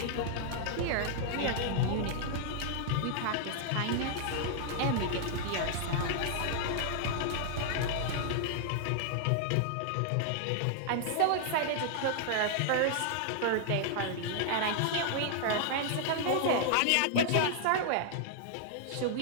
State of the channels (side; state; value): both; different; correlation -0.01